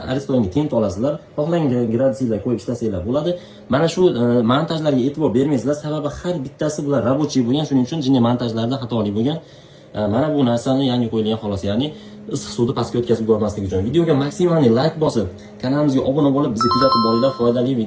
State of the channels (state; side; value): identical; both; correlation 1.00